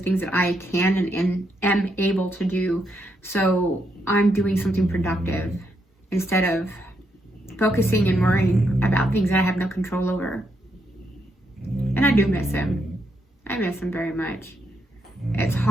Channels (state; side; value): normal; both; correlation 0.79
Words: things that I can and am able to do. So I'm doing something productive instead of focusing and worrying about things that I have no control over. And I do miss him. I miss him very much. It's